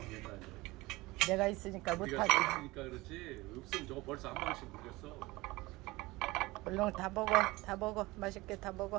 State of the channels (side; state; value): left; quieter; 21.1 dB